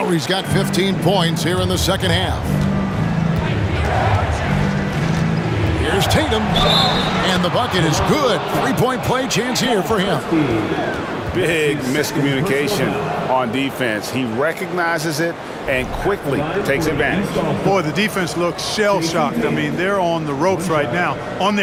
got 15 points here in the second half. Here's Tatum. And the bucket is good. Three-point play chance here for him. Big miscommunication on defense. He recognizes it and quickly takes advantage. Boy, the defense looks shell-shocked. I mean, they're on the ropes right now, on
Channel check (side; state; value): both; identical; correlation 1.00